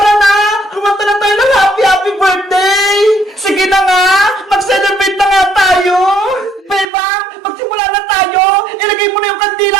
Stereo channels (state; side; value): drops out; left; at 6.9 s